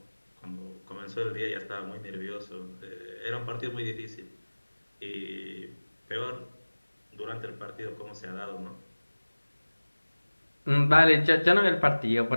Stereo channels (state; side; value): inverted; both; correlation -1.00